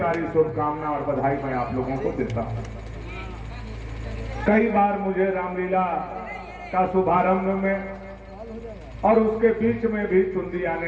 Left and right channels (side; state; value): both; identical; correlation 1.00